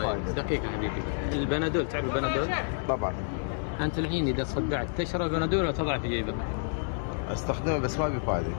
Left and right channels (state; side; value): silent; right; 58 dB below the other